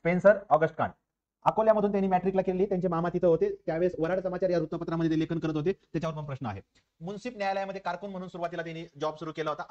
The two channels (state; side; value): identical; both; correlation 1.00